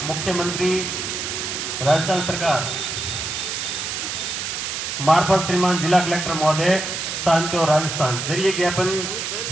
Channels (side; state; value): right; noise; hiss, 4 dB below the sound